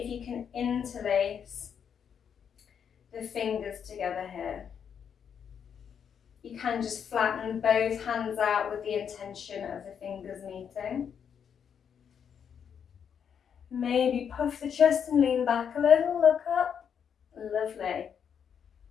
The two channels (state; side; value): quieter; right; 7.7 dB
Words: you can interlace the fingers together here. You can just flatten both hands out with the intention of the fingers meeting. Maybe puff the chest and lean back a little, look up. Lovely.